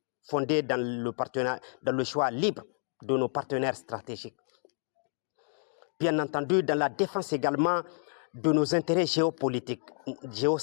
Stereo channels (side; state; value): right; silent; 57 dB below the other